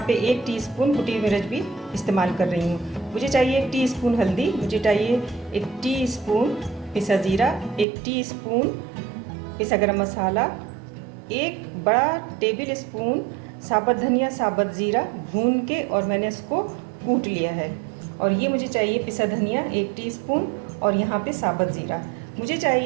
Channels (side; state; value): left; drops out; at 7.9 s